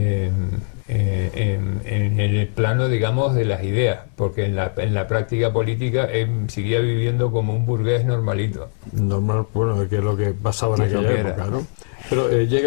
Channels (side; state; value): right; silent; 63 dB below the other